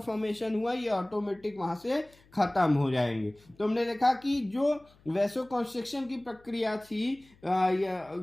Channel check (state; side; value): noise; left; hum, 29 dB below the sound